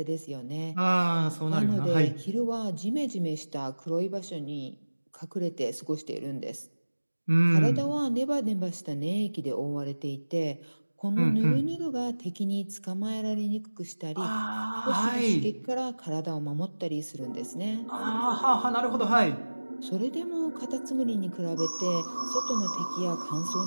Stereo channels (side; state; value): both; inverted; correlation -1.00